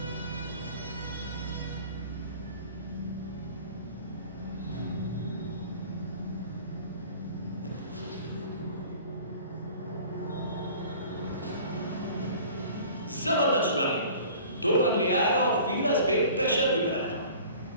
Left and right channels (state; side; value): inverted; both; correlation -0.46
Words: जबरदस्त रनिंग, 2 रन ले आए और फील्डर्स पे प्रेशर भी बनाया।